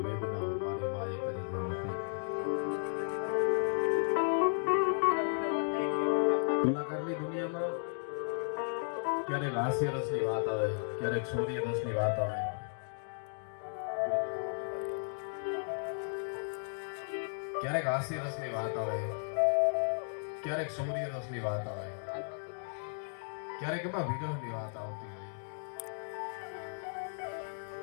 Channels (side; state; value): right; silent; digital silence